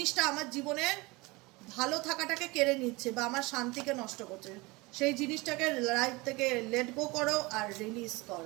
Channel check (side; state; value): left; quieter; 24.0 dB